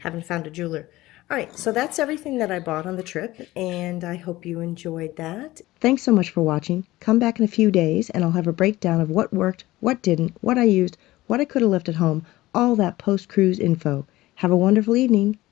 haven't found a jeweler. All right, so that's everything that I bought on the trip, and I hope you enjoyed that. Thanks so much for watching. Come back in a few days and I'll have a breakdown of what worked, what didn't, what I used, what I could have left at home, all that post-cruise info. Have a wonderful evening.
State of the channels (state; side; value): quieter; right; 17.6 dB